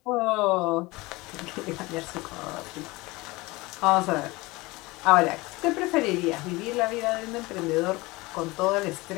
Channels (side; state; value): right; quieter; 22.3 dB